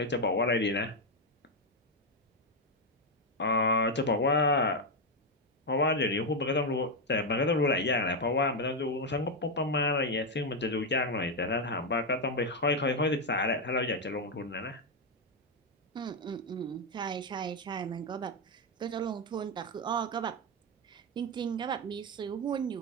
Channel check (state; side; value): normal; both; correlation 0.04